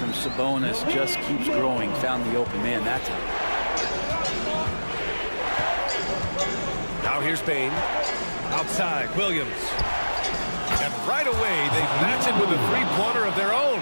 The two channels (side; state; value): both; inverted; correlation -1.00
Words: Sabonis just keeps growing. Found the open man that time. Now here's Bain. Outside, Williams. And right away, they match it with a three-pointer of their own.